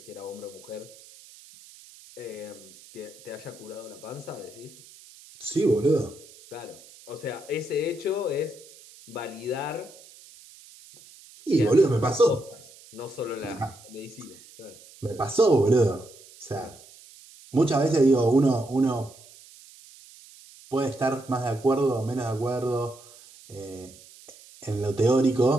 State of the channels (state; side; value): noise; right; hiss, 22 dB below the sound